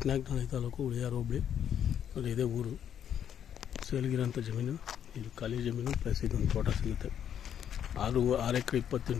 taluk ಉಳಿಯಾರು ಹೋಬಳಿ ಅಲ್ಲಿ ಇದೆ ಊರು. ಸೇಲ್ಗಿರೋಂಥ ಜಮೀನು ಇದು ಖಾಲಿ ಜಮೀನು ಪ್ಲಸ್ ಇದೊಂದು ತೋಟ ಸಿಗುತ್ತೆ. 6 ಎಕರೆ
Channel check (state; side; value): quieter; right; 9.2 dB